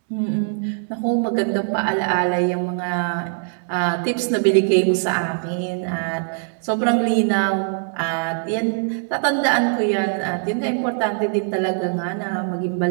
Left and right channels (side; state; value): left; silent; digital silence